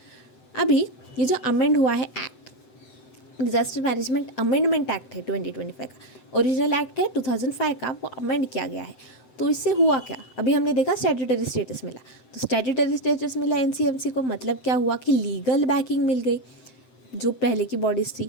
अभी ये जो अमेंड हुआ है act, disaster management amendment act है 2025 का, ओरिजिनल एक्ट है 2005 का, वो अमेंड किया गया है। तो इससे हुआ क्या? अभी हमने देखा स्टैट्यूटरी स्टेटस मिला, तो स्टैट्यूटरी स्टेटस मिला एनसीएमसी को, मतलब क्या हुआ कि लीगल बैकिंग मिल गई। जो पहले की बॉडीज़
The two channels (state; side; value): late; right; 7.8 ms